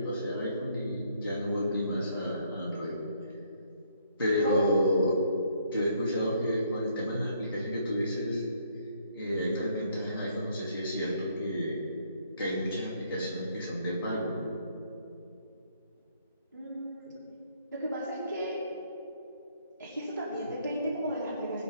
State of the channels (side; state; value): both; inverted; correlation -0.67